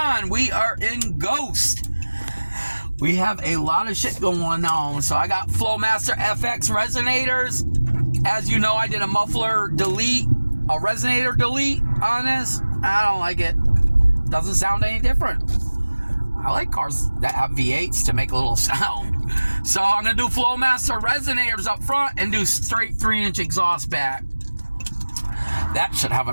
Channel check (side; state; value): both; inverted; correlation -1.00